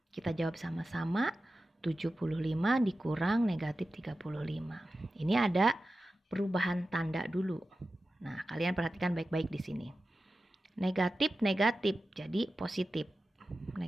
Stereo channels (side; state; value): both; normal; correlation 0.93